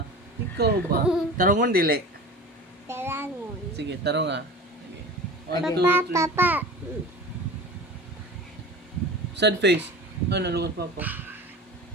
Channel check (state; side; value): normal; both; correlation 0.36